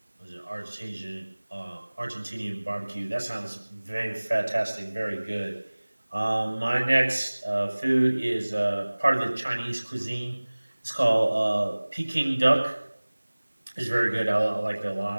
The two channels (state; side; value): inverted; both; correlation -1.00